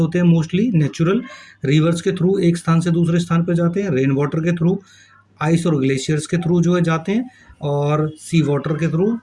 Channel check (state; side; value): identical; both; correlation 1.00